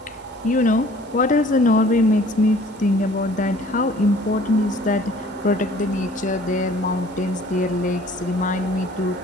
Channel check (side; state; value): both; normal; correlation 0.52